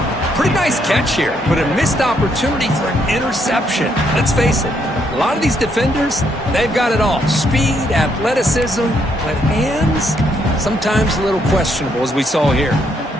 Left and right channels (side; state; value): both; normal; correlation 0.74